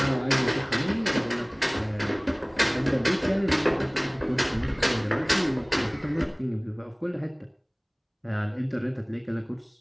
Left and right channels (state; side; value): identical; both; correlation 1.00